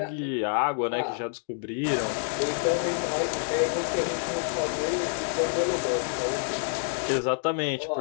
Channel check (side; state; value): right; silent; digital silence